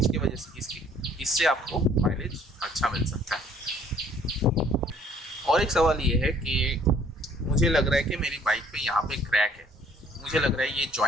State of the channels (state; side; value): normal; both; correlation 0.59